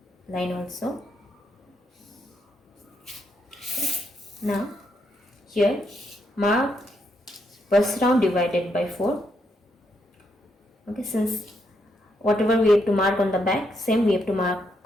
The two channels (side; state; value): both; normal; correlation 0.78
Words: line also. Okay. Now here mark bust round divided by 4. Okay, since whatever we have to mark on the back, same we have to mark